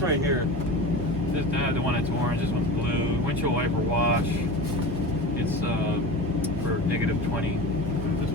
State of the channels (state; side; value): normal; both; correlation 0.30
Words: right here. The one that's orange, this one's blue. Windshield wiper wash. It's for -20. This